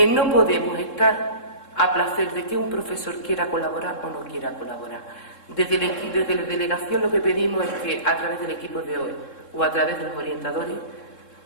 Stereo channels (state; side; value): late; right; 3.7 ms